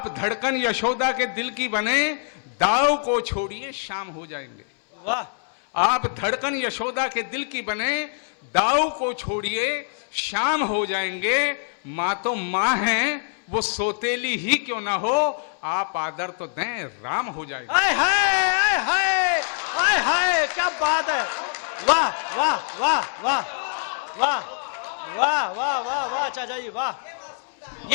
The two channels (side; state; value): right; silent; 62 dB below the other